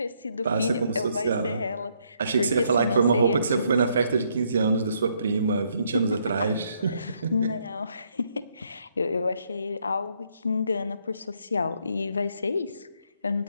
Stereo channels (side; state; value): both; inverted; correlation -0.72